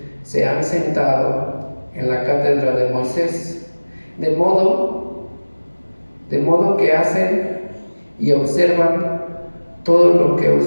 se han sentado en la cátedra de Moisés, de modo que hacen y observan todo lo que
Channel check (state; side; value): inverted; both; correlation -1.00